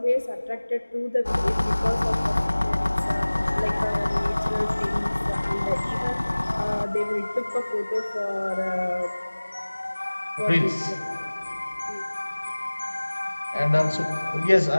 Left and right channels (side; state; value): both; inverted; correlation -1.00